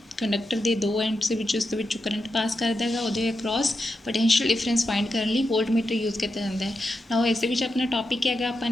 कंडक्टर के दो एंड्स के करंट पास करता है, वो अक्रॉस पोटेंशियल डिफरेंस फाइंड करने लिए वोल्ट मीटर यूज़ किया जाता है। ना इस अपना टॉपिक है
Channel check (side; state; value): both; normal; correlation 0.88